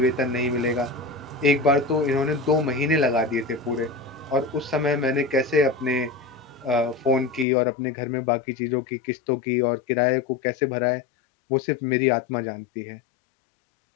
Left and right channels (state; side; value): drops out; right; at 7.5 s